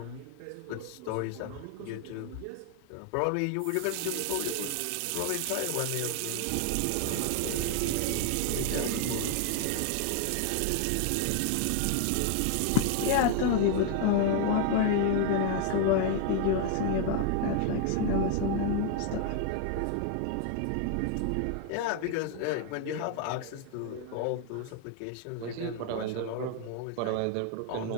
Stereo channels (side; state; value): both; different; correlation 0.00